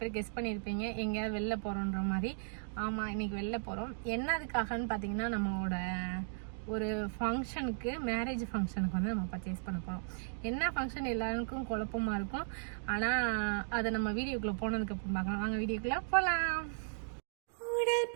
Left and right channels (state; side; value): silent; left; digital silence